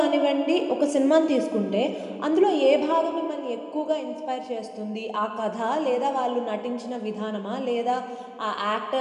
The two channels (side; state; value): both; identical; correlation 1.00